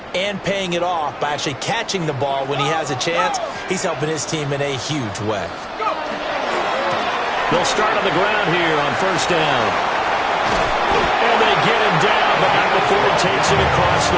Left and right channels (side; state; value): both; identical; correlation 1.00